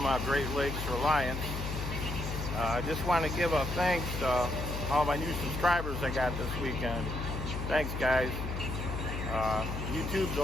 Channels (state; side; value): noise; left; hum, 4 dB below the sound